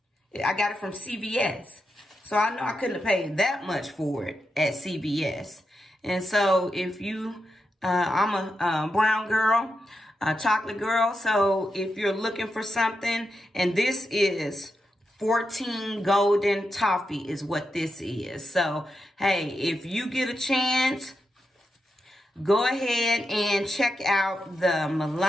I got it from CVS. So I know I couldn't have paid that much for it at CVS. And so if you, I'm a brown girl, a chocolate girl. So if you're looking for something, and this is 14 golden toffee is what this is. So, hey, if you get a chance, go ahead and check out the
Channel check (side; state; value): both; normal; correlation 0.86